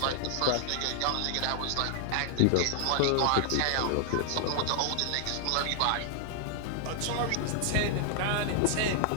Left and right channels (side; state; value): both; different; correlation 0.00